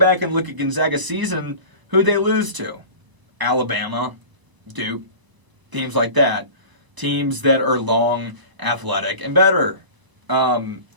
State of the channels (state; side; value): late; left; 1.0 ms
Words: and look at Gonzaga's season, who'd they lose to? Alabama, Duke, teams like that. Teams that are long, athletic, and better